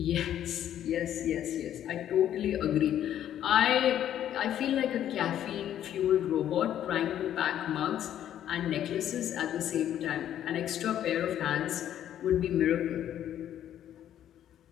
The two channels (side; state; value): right; quieter; 10.9 dB